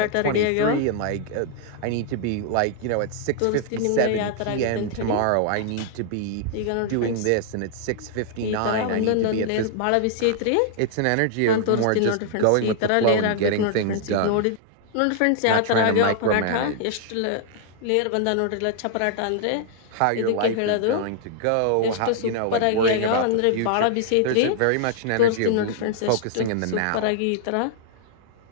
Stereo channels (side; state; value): both; different; correlation -0.01